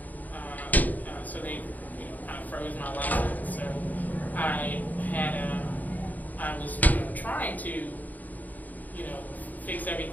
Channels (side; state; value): right; late; 0.081 ms